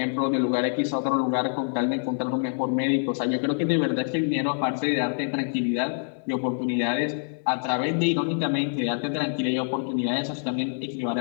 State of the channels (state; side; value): silent; right; digital silence